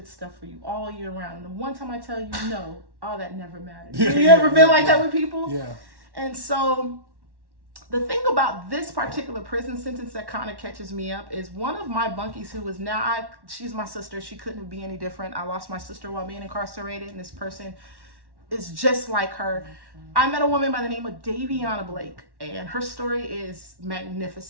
stuff for you all year round. And the one time I tell you no, all that never matters. Have you ever been like that with people? Yeah. And so the thing about this particular prison sentence that kind of catches me up is one of my bunkies, who is now, she's my sister. She couldn't be any different. I lost my sister while being incarcerated, and this person is just like her. I met a woman by the name of Daviana Blake, and her story is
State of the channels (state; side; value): late; left; 1.1 ms